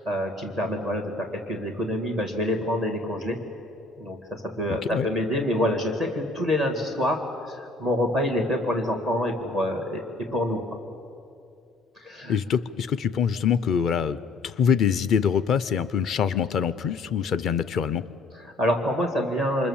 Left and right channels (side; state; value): right; quieter; 3.2 dB